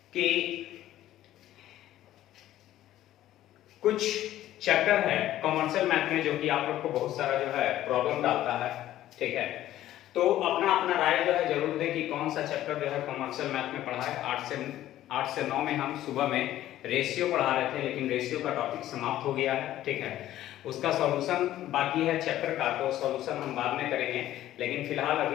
कि कुछ चैप्टर है कॉमर्शियल मैथ में जो कि आप लोग को बहुत सारा जो है प्रॉब्लम डालता है, ठीक है। तो अपना अपना राय जो है जरूर दें कि कौन सा चैप्टर जो है कॉमर्शियल मैथ में पढ़ा है। 8 से 9 में हम सुबह में रेशियो पढ़ा रहे थे, लेकिन रेशियो का टॉपिक समाप्त हो गया है, ठीक है। उसका सॉल्यूशन बाकी है चैप्टर का, तो सॉल्यूशन हम बाद में करेंगे। लेकिन फिलहाल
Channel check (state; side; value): quieter; right; 13.5 dB